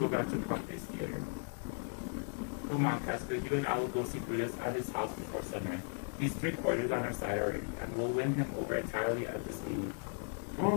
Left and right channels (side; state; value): right; silent; 53 dB below the other